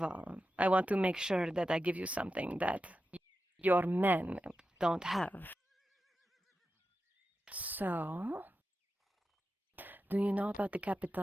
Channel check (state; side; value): normal; both; correlation 0.91